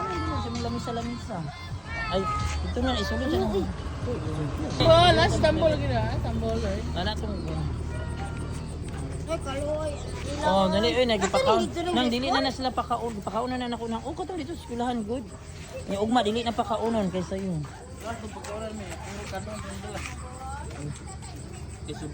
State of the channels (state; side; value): identical; both; correlation 1.00